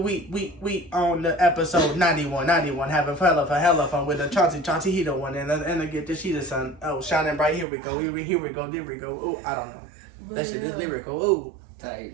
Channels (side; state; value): left; drops out; at 7.7 s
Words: on the episode 91 having hella fun with the Chawncy he the one and the get the she the sun. Oh, shining bright. Here we go. Here we go. Oh, I don't know. But, that shit is lyrical. Ooh.